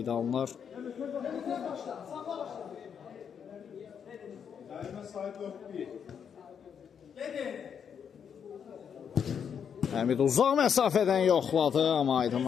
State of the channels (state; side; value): quieter; right; 7.5 dB